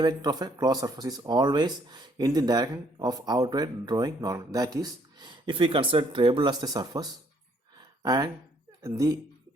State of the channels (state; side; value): normal; both; correlation 0.66